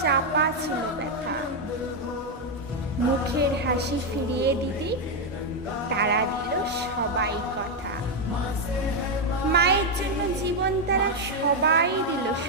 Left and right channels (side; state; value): both; normal; correlation 0.03